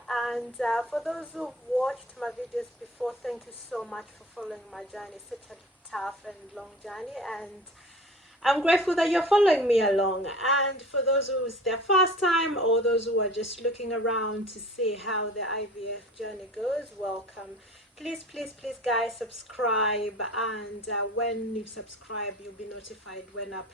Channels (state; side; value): normal; both; correlation 0.42